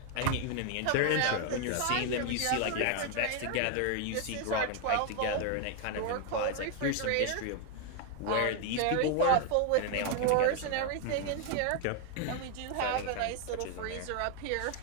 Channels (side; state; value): both; different; correlation 0.00